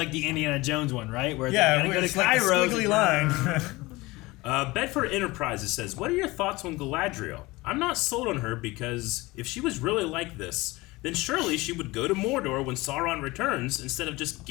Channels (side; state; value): right; quieter; 21.4 dB